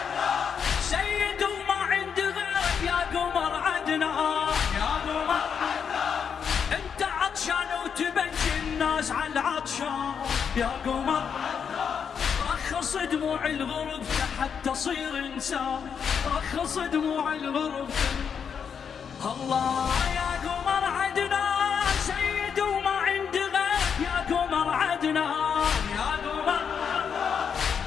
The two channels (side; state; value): right; quieter; 7.0 dB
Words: سيد وما عند غيرك يا قمر عدنا يا قمر انت عطشان وتبكي الناس على العطشان يا قمر رخص دموع الغرب حتى تصير انسان رخص دموع الغرب الله يا قمر عدنان سيد وما عند غيرك يا قمر عدنان يا قمر